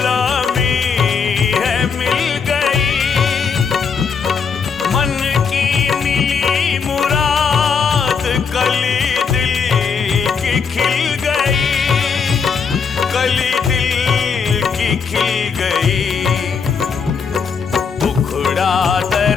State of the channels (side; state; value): right; quieter; 6.0 dB